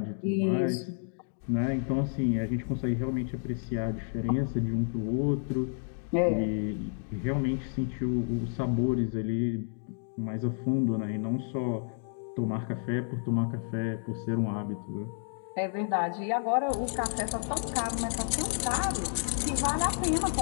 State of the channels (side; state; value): right; silent; 57 dB below the other